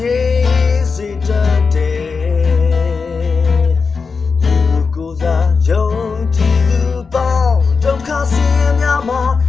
ယ်စေတတ်တယ်သူကိုစားယုံကြည်သူပေါင်းဒုက္ခဆင်းရဲများမှာ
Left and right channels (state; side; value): quieter; right; 4.9 dB